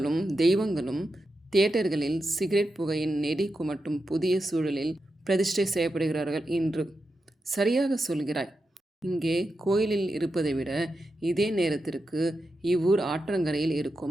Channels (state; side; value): normal; both; correlation 0.88